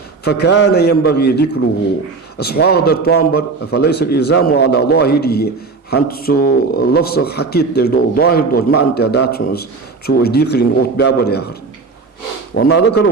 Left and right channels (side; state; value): left; quieter; 4.2 dB